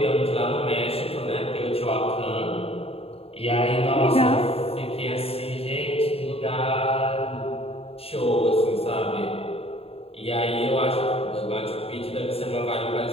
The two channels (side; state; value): right; late; 0.28 ms